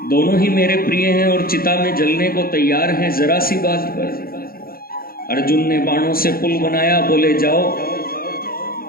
दोनों ही मेरे प्रिय हैं और चिता में जलने को तैयार हैं जरा सी बात पर। अर्जुन ने बाणों से पुल बनाया, बोले जाओ।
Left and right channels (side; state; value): right; late; 0.43 ms